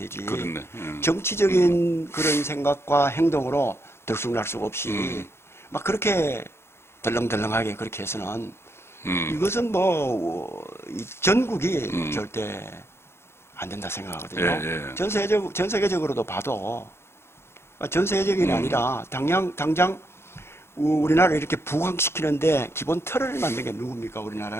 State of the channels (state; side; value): late; right; 0.12 ms